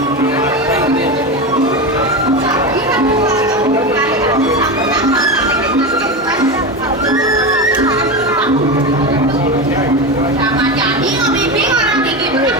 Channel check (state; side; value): normal; both; correlation 0.19